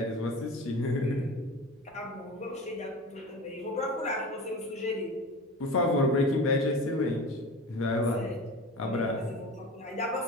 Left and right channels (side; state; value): both; normal; correlation 0.32